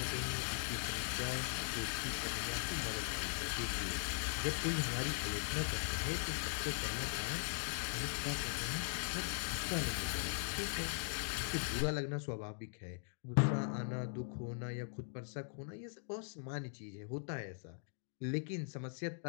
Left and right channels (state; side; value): silent; right; digital silence